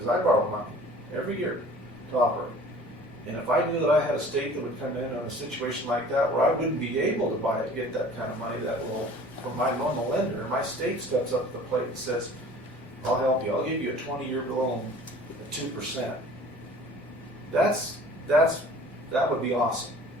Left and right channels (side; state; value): both; normal; correlation 0.47